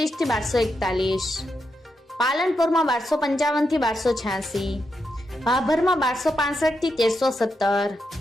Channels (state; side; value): normal; both; correlation 0.84